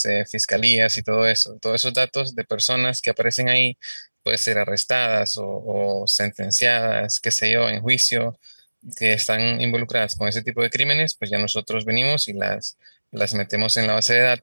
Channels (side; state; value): both; inverted; correlation -1.00